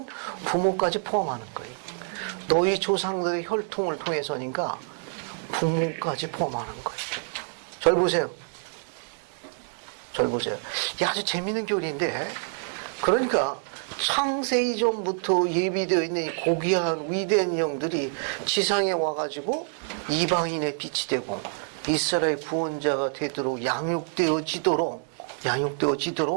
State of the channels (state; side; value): silent; left; 60 dB below the other